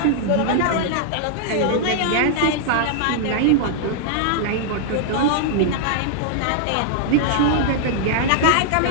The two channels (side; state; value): both; different; correlation -0.01